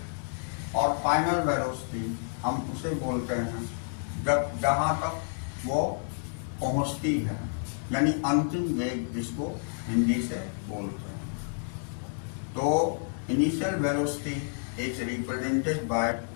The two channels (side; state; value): right; silent; digital silence